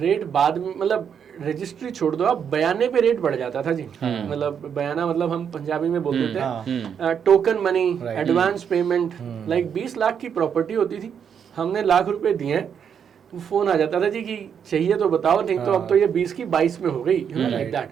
बाद में, मतलब रजिस्ट्री छोड़ दो आप, बयाने पे रेट बढ़ जाता था जी। मतलब बयाना मतलब हम पंजाबी में बोल देते हैं token money, advance payment. Like 20 lakh की प्रॉपर्टी होती थी, हमने लाख रुपए दिए हैं, फोन आ जाता था जी कि चाहिए तो बताओ, नहीं तो अब तो ये 20 की 22 में हो गई, लाइक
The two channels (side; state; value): left; quieter; 7.7 dB